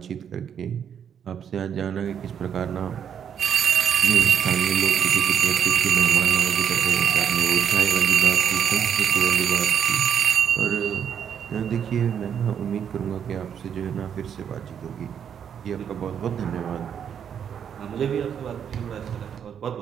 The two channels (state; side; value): quieter; left; 8.3 dB